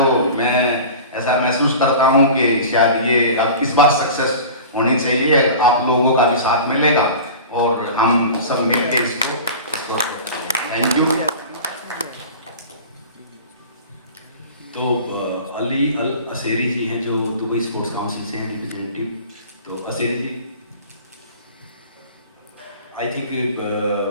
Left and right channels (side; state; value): both; inverted; correlation -0.37